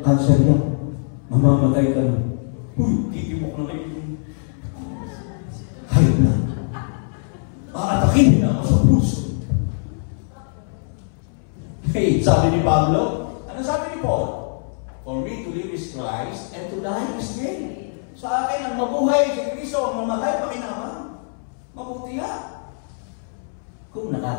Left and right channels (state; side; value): silent; right; 63 dB below the other